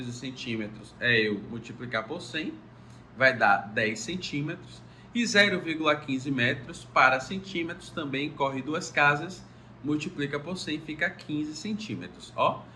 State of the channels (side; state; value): both; identical; correlation 1.00